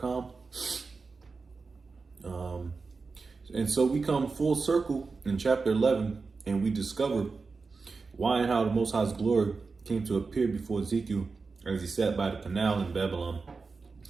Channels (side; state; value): left; quieter; 4.4 dB